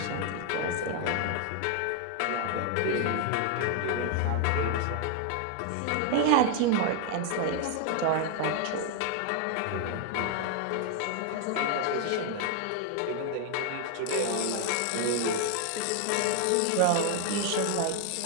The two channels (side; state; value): both; different; correlation 0.00